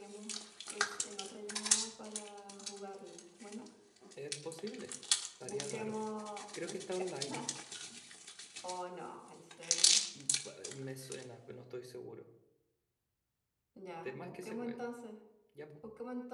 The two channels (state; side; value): identical; both; correlation 1.00